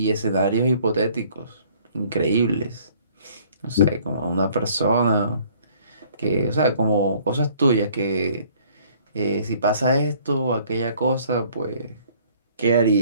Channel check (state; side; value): inverted; both; correlation -0.58